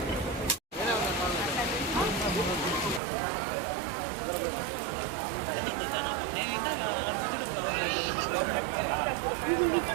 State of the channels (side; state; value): left; drops out; at 3.0 s